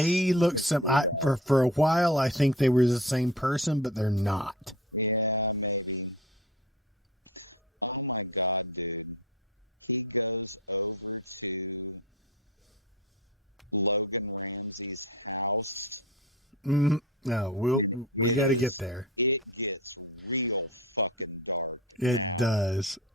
look for a while. I think they were the same person, but they're not. Yeah, maybe. Oh my God, dude. He goes over to Logan Ramsey's house. No, we got to get there. It gets real fucking dark. It does.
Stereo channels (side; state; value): both; normal; correlation 0.32